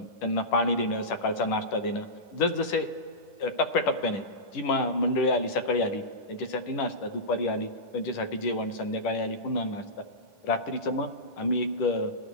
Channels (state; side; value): late; right; 10 ms